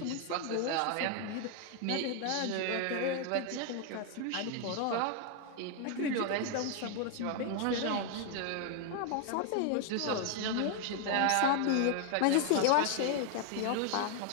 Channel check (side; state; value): both; different; correlation 0.00